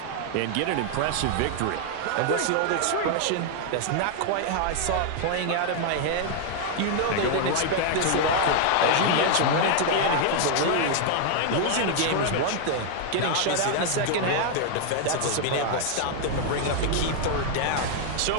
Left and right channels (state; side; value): different; both; correlation 0.00